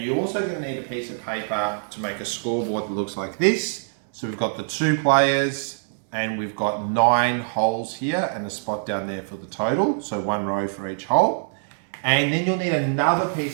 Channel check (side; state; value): left; silent; digital silence